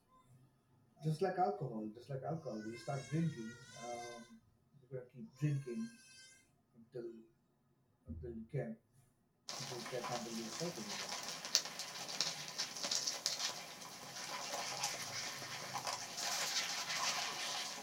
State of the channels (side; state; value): both; identical; correlation 1.00